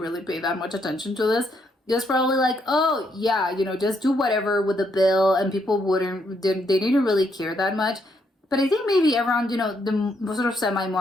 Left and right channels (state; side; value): normal; both; correlation 0.75